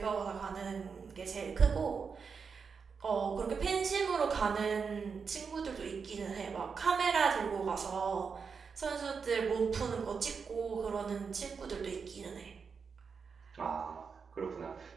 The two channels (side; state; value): left; quieter; 5.6 dB